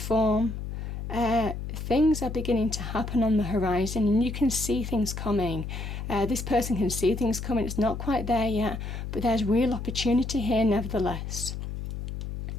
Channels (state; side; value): noise; left; hum, 6 dB below the sound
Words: Things are beginning to happen on the horizon, and you can see things coming. This person can see things coming. It's not quite there yet, but there's real opportunity here nevertheless.